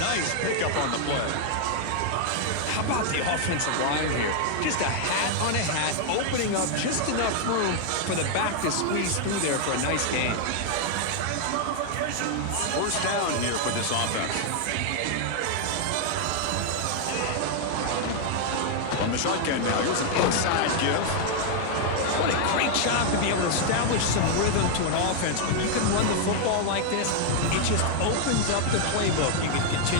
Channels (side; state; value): both; different; correlation 0.00